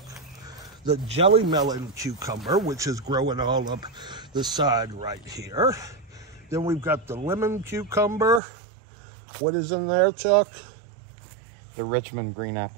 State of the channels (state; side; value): drops out; left; at 8.4 s